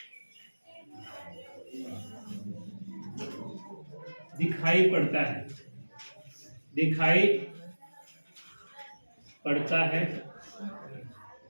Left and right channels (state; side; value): inverted; both; correlation -1.00